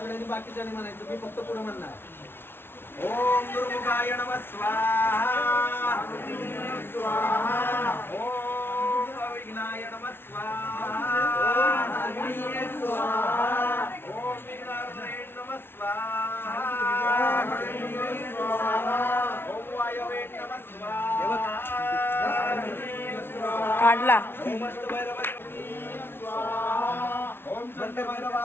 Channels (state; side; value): late; right; 0.11 ms